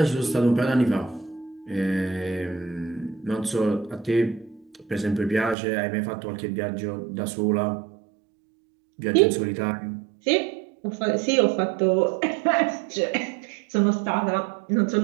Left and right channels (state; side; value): drops out; left; at 5.6 s